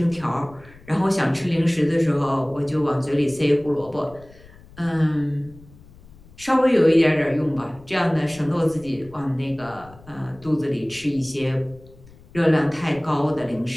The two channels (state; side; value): noise; left; rumble, 23 dB below the sound